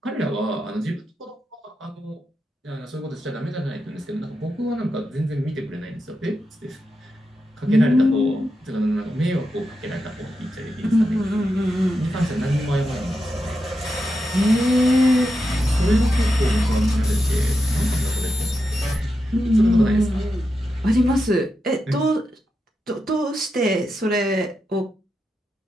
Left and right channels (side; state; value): both; normal; correlation 0.87